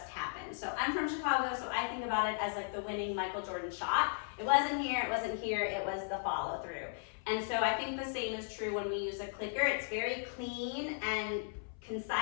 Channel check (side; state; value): right; silent; 54 dB below the other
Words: happened. So I'm from Chicago, so I think about it as like the winning Michael Jordan shot. It wasn't here, it was the follow through. And so I think the same is true when we use a clicker. It's very clean and